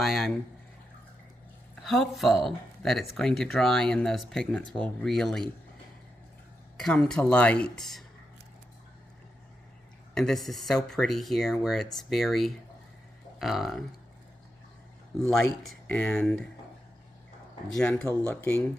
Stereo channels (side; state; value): both; normal; correlation 0.86